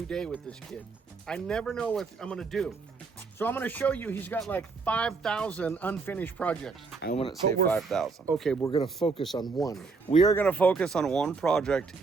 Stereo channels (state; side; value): quieter; left; 4.4 dB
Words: day with this kid. I never know what I'm gonna do. So I'm gonna show you, he's got like 5,000 unfinished projects. I wouldn't say 5,000. Okay, we're gonna focus on one. We are gonna focus on one project